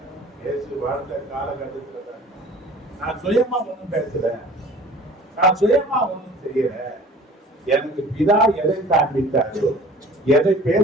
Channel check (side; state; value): both; normal; correlation 0.47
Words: இயேசு வாழ்ந்த காலகட்டத்தில் நான் சுயமா ஒன்றும் பேசுறேன், நான் சுயமா ஒன்றும் செய்யற. எனக்கு பிதா எதை காண்பித்தாரோ, எதை